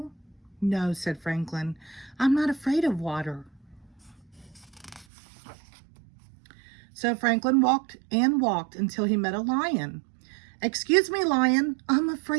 "No," said Franklin. "I'm not afraid of water." So Franklin walked and walked until he met a lion. "Excuse me, lion. I'm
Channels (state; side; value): drops out; left; at 5.1 s